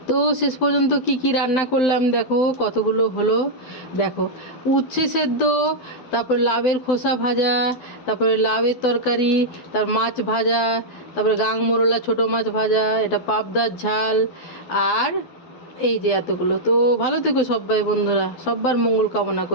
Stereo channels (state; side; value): late; right; 12 ms